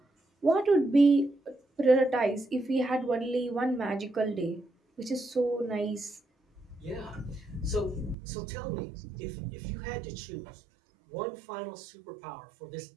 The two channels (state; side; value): drops out; left; at 8.2 s